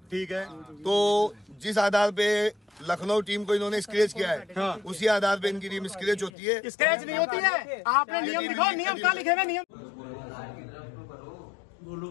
ठीक है। तो जिस आधार पे लखनऊ टीम को इन्होंने स्क्रैच किया है, उसी आधार पे इनकी टीम स्क्रैच होती है। स्क्रैच नहीं होती है, आपने नियम दिखाओ, नियम कहाँ लिखे हुए नियम?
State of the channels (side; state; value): right; drops out; at 6.3 s